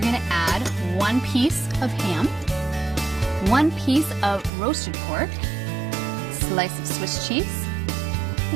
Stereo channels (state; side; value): drops out; left; at 4.5 s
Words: going to add 1 piece of ham, 1 piece of roasted pork, slice of Swiss cheese,